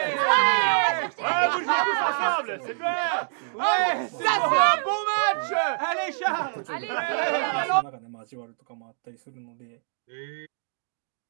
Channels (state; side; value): silent; left; digital silence